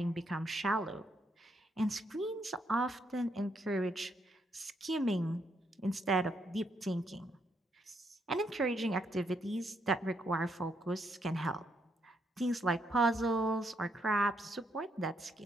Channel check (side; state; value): both; normal; correlation 0.76